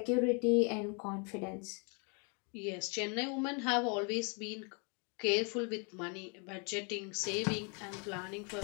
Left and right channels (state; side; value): quieter; right; 35.7 dB